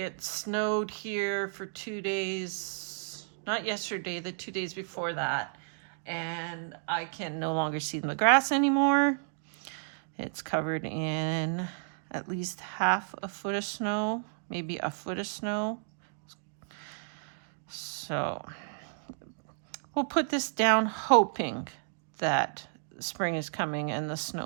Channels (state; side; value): silent; left; digital silence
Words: snowed here for 2 days, not yesterday, the 2 days before that, and I can no longer see the grass anymore. It's covered in at least half a foot of snow, maybe a foot of snow. So we'll put this down hoping that spring is coming and the